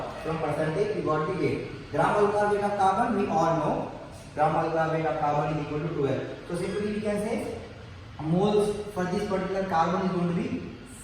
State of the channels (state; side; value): identical; both; correlation 1.00